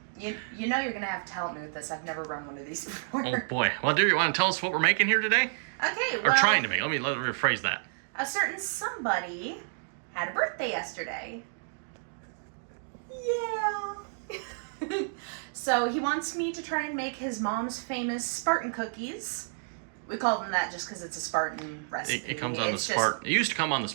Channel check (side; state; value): left; silent; digital silence